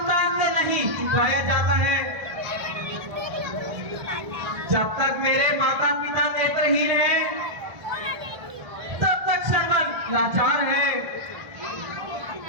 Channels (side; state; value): left; late; 1.4 ms